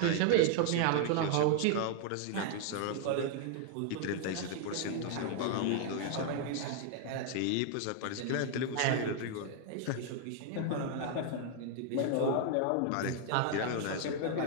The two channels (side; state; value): both; different; correlation 0.00